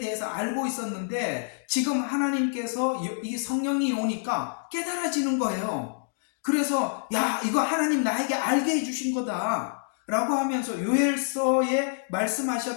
알고 있었는데 지금 하나님께서 이 성령이 오니까 깨달아지는 거예요. 그래서 야, 이거 하나님 나에게 알게 해주신 거다 라고 하면서 요엘서에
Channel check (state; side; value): silent; right; digital silence